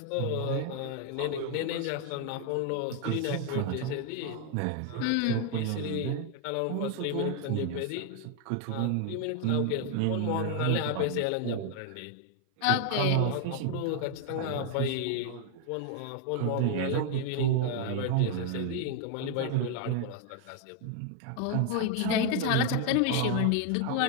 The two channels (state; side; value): different; both; correlation 0.00